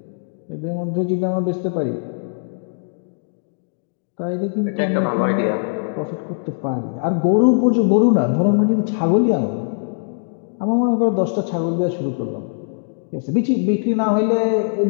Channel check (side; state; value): right; silent; digital silence